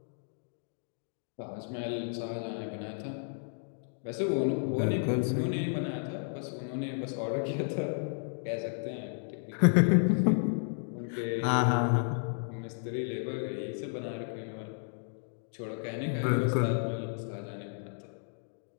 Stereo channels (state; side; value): silent; right; digital silence